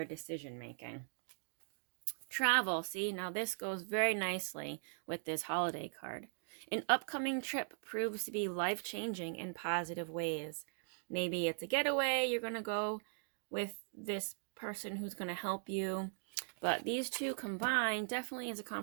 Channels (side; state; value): left; silent; digital silence